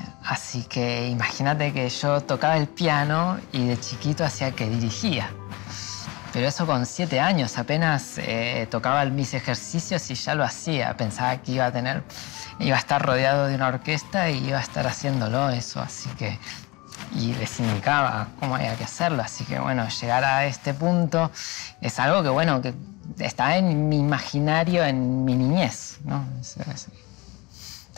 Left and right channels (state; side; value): quieter; right; 24.1 dB